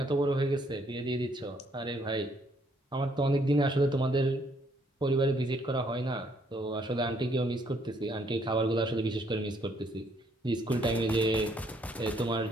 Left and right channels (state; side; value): normal; both; correlation 0.68